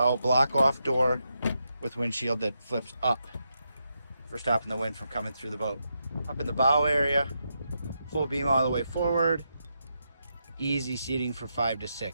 block off door with windshield that flips up for stopping the wind from coming through the boat. Up in the bow area, full beam all the way forward, easy seating for 5 to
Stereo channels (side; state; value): both; inverted; correlation -0.84